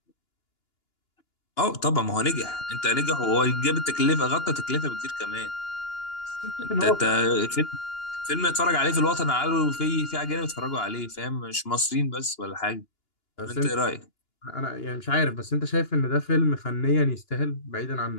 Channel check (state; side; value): late; right; 2.9 ms